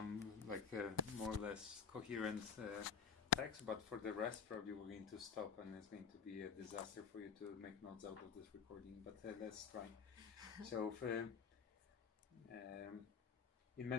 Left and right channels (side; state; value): right; quieter; 6.1 dB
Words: like more or less coherent text, but for the rest probably we're going to stop and it's going to be a disaster for you to make notes out of this recording, but let's try. So in